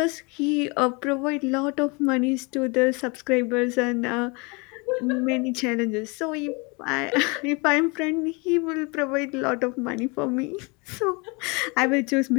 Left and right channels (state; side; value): quieter; right; 29.4 dB